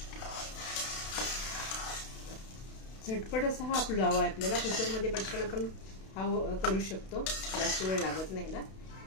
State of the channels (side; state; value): right; late; 32 ms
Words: झटपट असा हा पुलाव आहे. आपल्याला कुकरमध्ये पटकन आपण हा करू शकतो, जास्त वेळ लागत नाही ना.